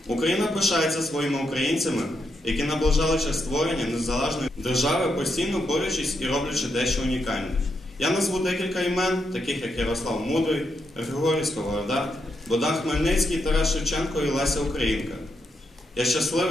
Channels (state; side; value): normal; both; correlation 0.81